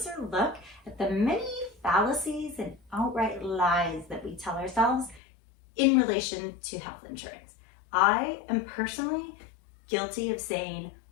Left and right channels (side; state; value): right; drops out; at 5.2 s